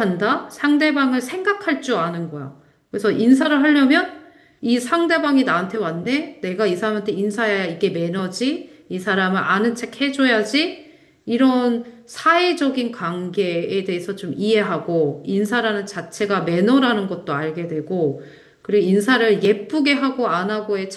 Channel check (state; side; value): identical; both; correlation 1.00